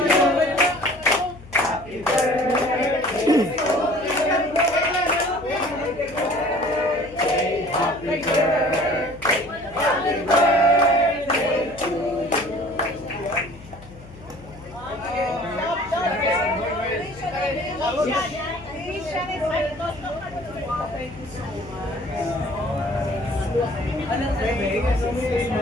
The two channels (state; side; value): noise; left; hum, 19 dB below the sound